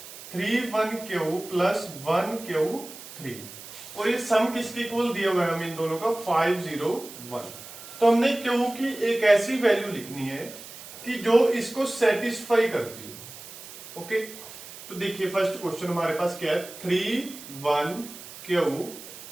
3 1 प्लस 1 3 और ये सम किसके इक्वल दिया हुआ है हमें इन दोनों का 5 0 1। तो हमने क्यू की एक ऐसी वैल्यू लिखनी है कि जो इसको सेटिस्फाई करती हो। ओके, तो देखिए फर्स्ट क्वेश्चन हमारे पास क्या है 3 1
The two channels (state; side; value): noise; right; hiss, 15 dB below the sound